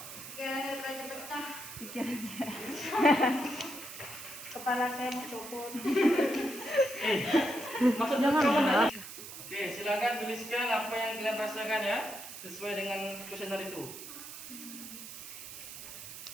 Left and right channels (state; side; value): noise; right; hiss, 11 dB below the sound